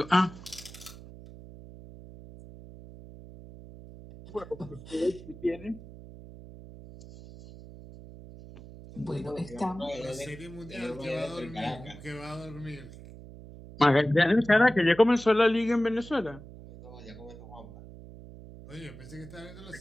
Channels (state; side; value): noise; right; hum, 16 dB below the sound